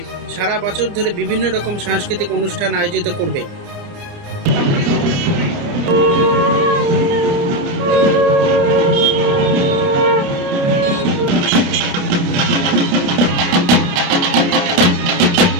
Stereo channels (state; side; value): late; left; 29 ms